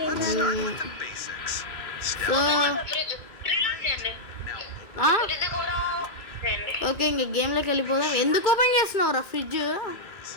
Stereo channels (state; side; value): late; right; 2.3 ms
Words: ఓకే, ఇంక గేమ్లోకి వెళ్ళిపోదాం. ఎందుకు ఓపెన్ చేస్తున్నావురా ఫ్రిడ్జ్?